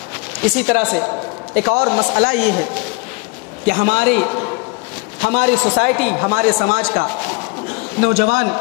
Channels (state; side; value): quieter; right; 30.0 dB